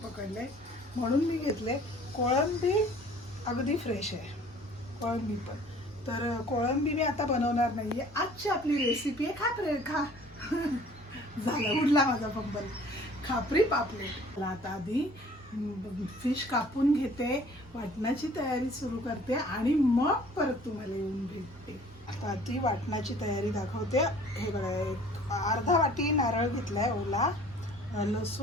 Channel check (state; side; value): normal; both; correlation 0.52